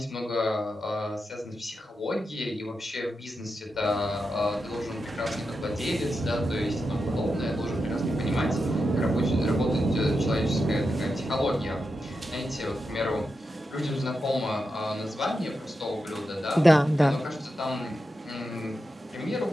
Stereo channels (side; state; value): both; normal; correlation 0.88